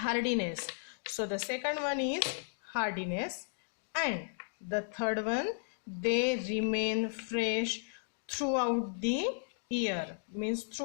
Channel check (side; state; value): right; silent; digital silence